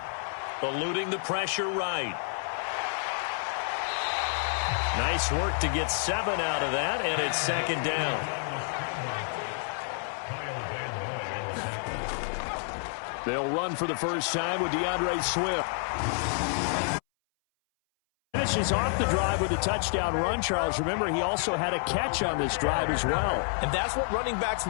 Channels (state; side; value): silent; right; 59 dB below the other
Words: Eluding the pressure right. Nice work to get 7 out of that, and it's 2nd down. They'll run for the first time with DeAndre Swift. Finishes off the drive with a touchdown run, Charles. Remember, he also had a catch on this drive as well. And that's what running backs